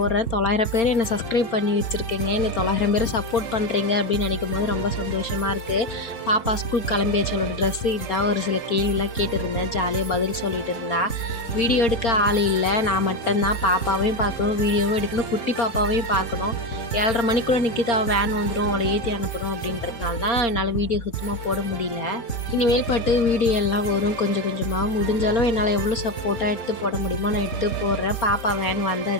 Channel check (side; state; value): right; late; 4.0 ms